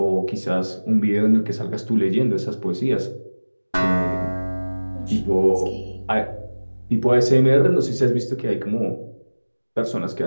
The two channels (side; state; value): both; inverted; correlation -1.00